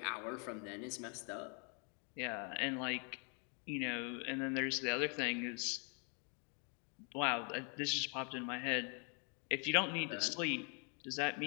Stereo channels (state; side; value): quieter; right; 37.4 dB